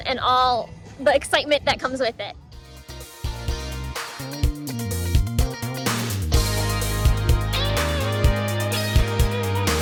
all the excitement that comes with it.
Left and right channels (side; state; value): both; identical; correlation 1.00